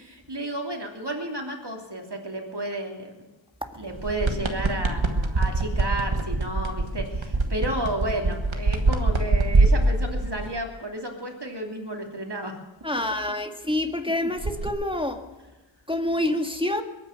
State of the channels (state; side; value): normal; both; correlation 0.57